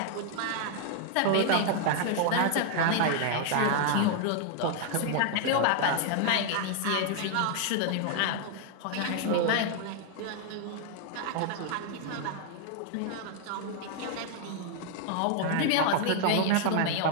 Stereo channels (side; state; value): both; different; correlation 0.00